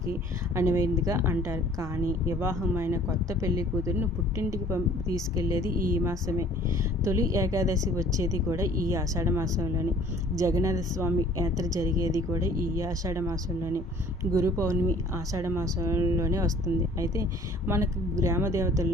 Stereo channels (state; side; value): normal; both; correlation 0.53